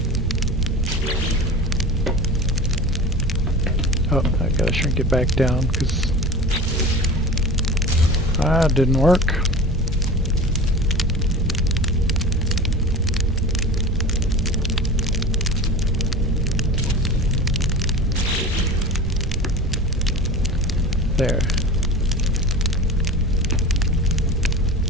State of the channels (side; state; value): both; normal; correlation 0.33